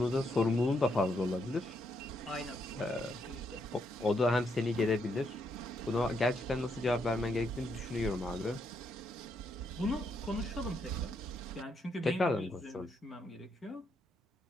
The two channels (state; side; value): normal; both; correlation 0.77